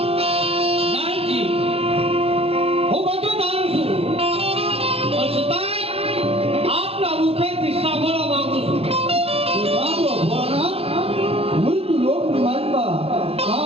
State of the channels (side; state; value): left; late; 0.29 ms